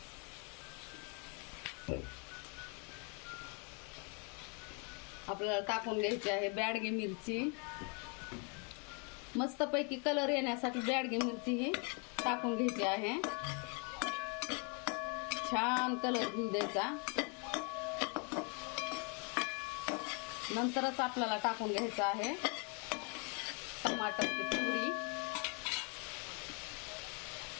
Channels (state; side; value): quieter; right; 35.7 dB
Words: आपल्याला टाकून घ्यायची आहे बॅडगी मिरची। मस्तपैकी कलर येण्यासाठी बॅडगी मिरची ही टाकून घ्यायची आहे। छान कलर घेऊ द्यायचा। नंतरच आपल्याला टाकून घ्यायचं आहे टमाटरची प्युरी।